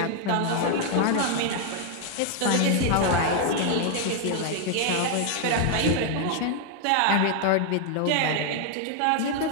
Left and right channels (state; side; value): different; both; correlation 0.00